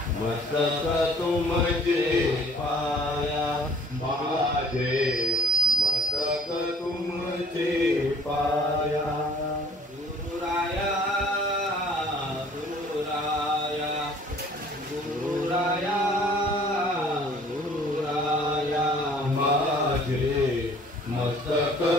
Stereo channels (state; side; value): normal; both; correlation 0.54